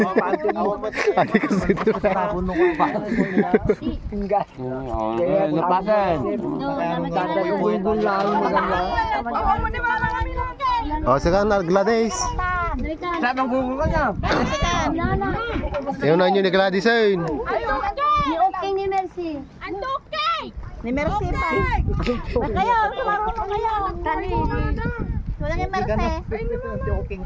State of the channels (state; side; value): identical; both; correlation 1.00